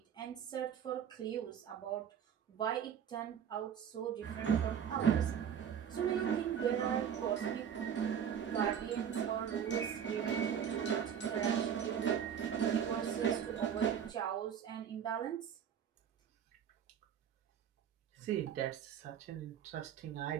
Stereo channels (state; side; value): quieter; left; 8.4 dB